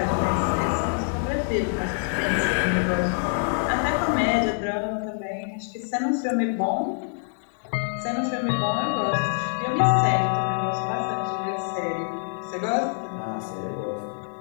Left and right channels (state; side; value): silent; right; digital silence